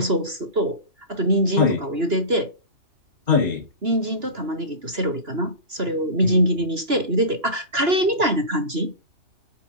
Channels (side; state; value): left; late; 2.9 ms